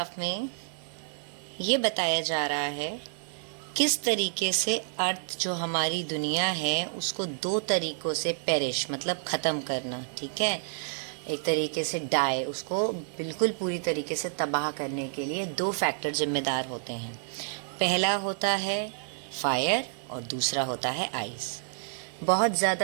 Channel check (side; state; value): left; silent; digital silence